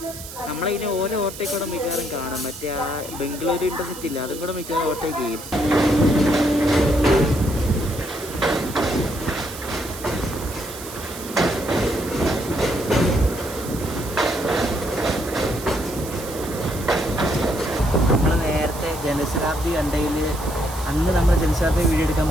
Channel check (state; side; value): noise; right; hiss, 13 dB below the sound